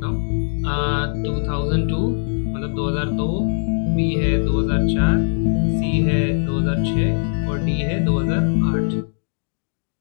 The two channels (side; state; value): right; silent; digital silence